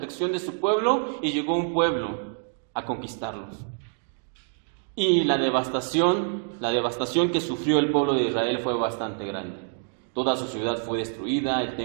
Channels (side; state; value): left; silent; 56 dB below the other